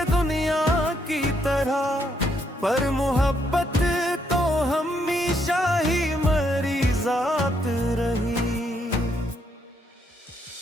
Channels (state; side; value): normal; both; correlation 0.74